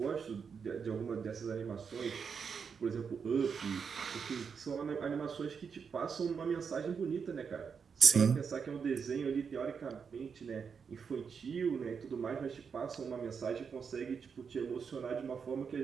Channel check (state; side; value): quieter; left; 6.2 dB